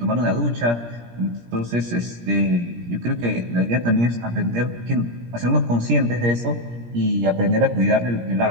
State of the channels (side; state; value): left; late; 17 ms